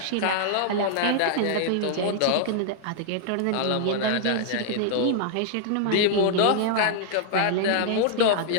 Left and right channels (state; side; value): different; both; correlation -0.01